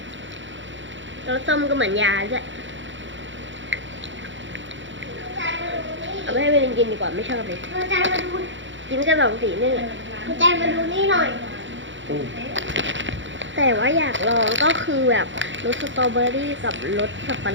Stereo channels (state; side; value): late; left; 0.55 ms